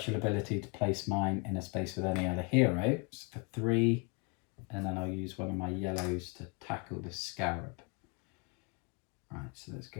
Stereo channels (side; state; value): right; quieter; 32.1 dB